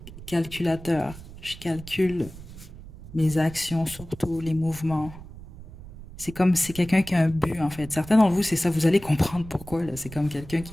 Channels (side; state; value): right; noise; rumble, 16 dB below the sound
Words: calculateur. Je calcule mes actions, surtout les mouvements. C'est comme, c'est quelqu'un qui a un but, en fait. Certains d'entre vous, c'est ça, vous allez comprendre pourquoi, là. C'est comme quelqu'un